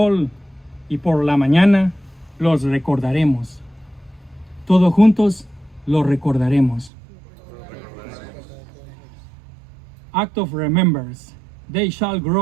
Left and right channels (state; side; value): drops out; left; at 6.9 s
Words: y por la mañana los recordaremos. Todos juntos los recordaremos. Act of remembrance. They shall